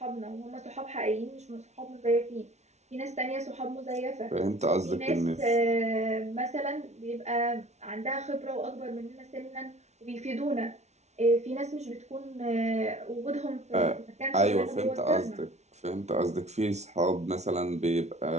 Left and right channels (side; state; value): left; late; 0.32 ms